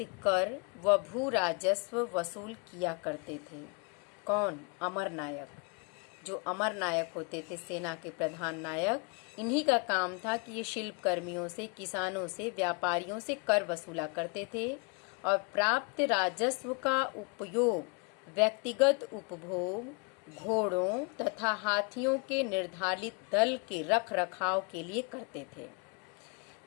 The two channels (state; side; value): quieter; right; 35.6 dB